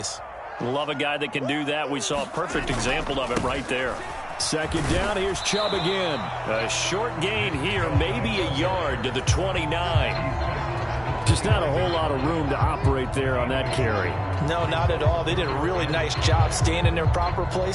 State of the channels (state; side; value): identical; both; correlation 1.00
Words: Love a guy that can do that. We saw a perfect example of it right there. 2nd down, here's Chubb again. A short gain here, maybe a yard to the 29. Just not a whole lot of room to operate there on that carry. No, not at all. They did a really nice job staying in their proper